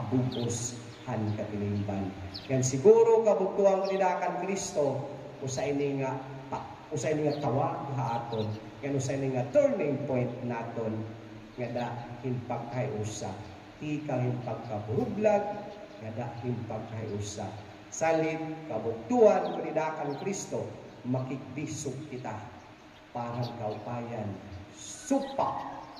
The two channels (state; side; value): identical; both; correlation 1.00